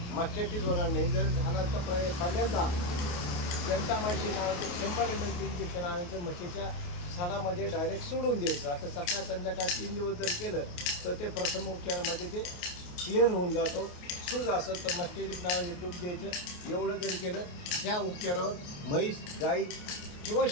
मस्टायटिस होणार नाही। जर झाला तर पहिल्यांदा जंटामायसिन नावाचं 100 ml इंजेक्शन आणायचं, म्हशीच्या सणामध्ये डायरेक्ट सोडून द्यायचं। आता सकाळ संध्याकाळ 3 दिवस जर केलं तर ते प्रथम उपचारामध्ये ते क्लिअर होऊन जातो। सूज असेल तर मस्टायटिस नावाचे तूप द्यायचं। एवढं जर केलं, ह्या उपचारावर म्हैस, गाई किंवा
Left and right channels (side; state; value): right; late; 28 ms